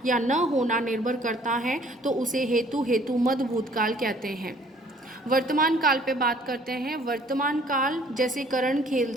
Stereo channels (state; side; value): normal; both; correlation 0.57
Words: या न होना निर्भर करता है तो उसे हेतु मद भूतकाल कहते हैं। वर्तमान काल पे बात करते हैं। वर्तमान काल, जैसे करण